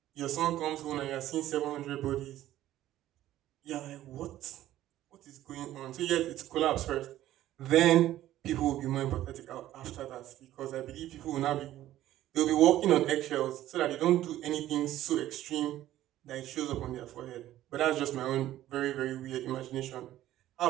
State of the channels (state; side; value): quieter; left; 13.7 dB